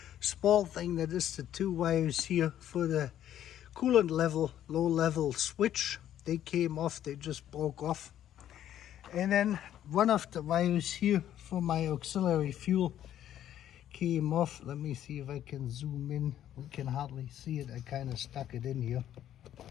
small thing, that is the two wires here for the coolant level, low level switch. They came off, they just broke off. And then one of the wires here for my auxiliary fuel came off. Let me see if I can zoom in. We can hardly see it. I kind of stuck it in here.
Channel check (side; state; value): right; quieter; 11.3 dB